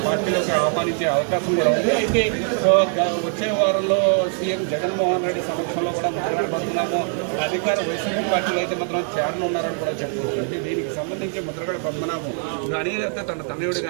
పార్టీలోకి ఆహ్వానించే అవకాశం కూడా ఉంది. అయితే వచ్చే వారంలో సీఎం జగన్మోహన్ రెడ్డి సమక్షంలో కూడా ముద్రగడ పద్మనాభం అధికార వైసీపీ పార్టీలో అయితే మాత్రం చేరనున్నారని కూడా చెప్తున్నారు. అంటే దీనికి సంబంధించి ముద్రగడ పద్మనాభం కానీ అయితే తన తనయుడు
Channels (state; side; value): silent; left; 56 dB below the other